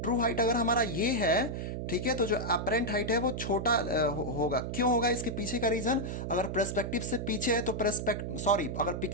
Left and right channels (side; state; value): right; noise; hum, 4 dB below the sound